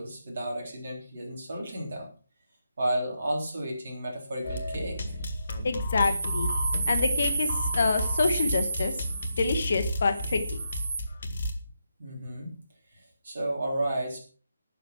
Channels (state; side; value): inverted; both; correlation -0.83